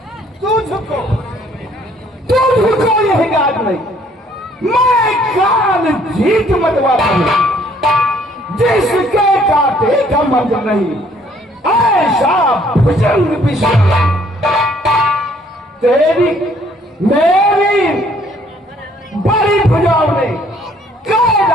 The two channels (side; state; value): both; normal; correlation 0.62